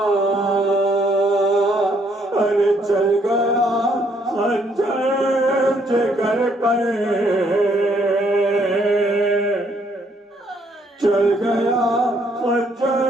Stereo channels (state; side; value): normal; both; correlation 0.69